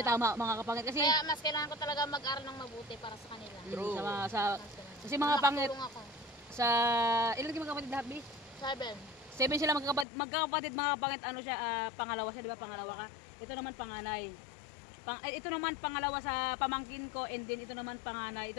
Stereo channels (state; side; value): drops out; right; at 10.1 s